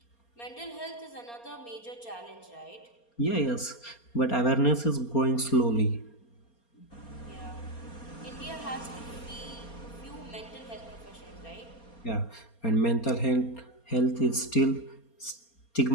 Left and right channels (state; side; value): late; right; 4.3 ms